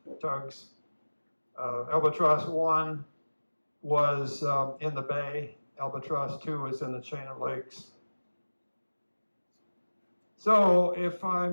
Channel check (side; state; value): both; inverted; correlation -1.00